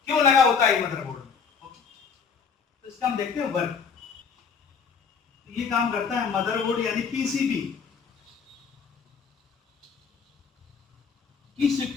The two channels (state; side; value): quieter; right; 6.0 dB